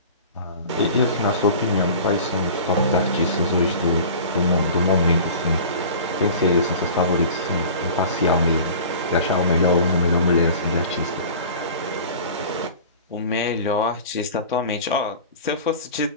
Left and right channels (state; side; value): inverted; both; correlation -0.40